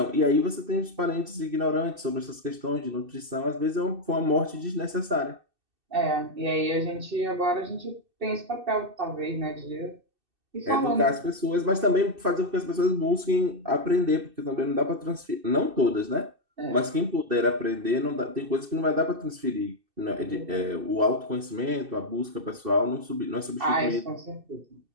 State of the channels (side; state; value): left; late; 2.6 ms